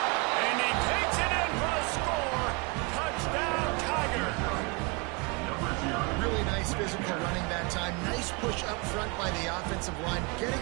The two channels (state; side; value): quieter; left; 29.1 dB